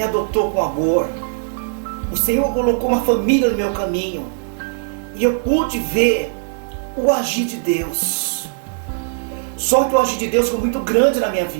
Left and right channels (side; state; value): left; silent; 57 dB below the other